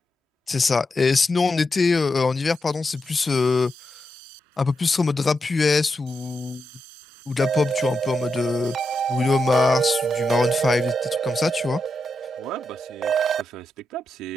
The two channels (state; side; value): normal; both; correlation 0.86